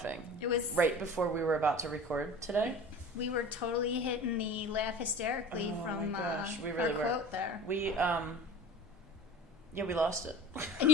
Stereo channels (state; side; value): normal; both; correlation 0.39